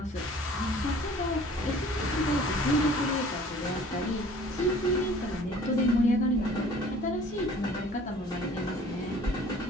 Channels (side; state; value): both; normal; correlation 0.50